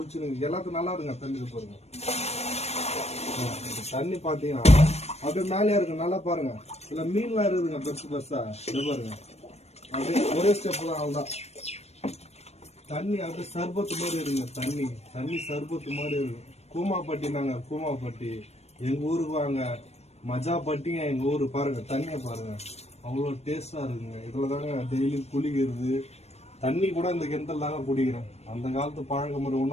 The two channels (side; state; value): right; late; 0.31 ms